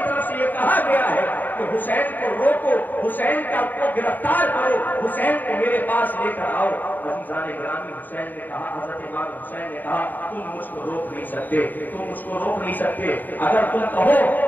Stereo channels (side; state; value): right; late; 0.087 ms